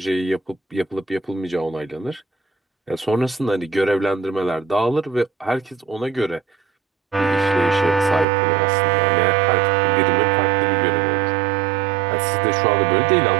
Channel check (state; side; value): drops out; left; at 8.2 s